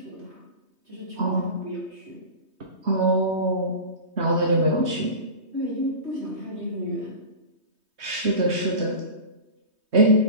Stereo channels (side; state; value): left; late; 3.2 ms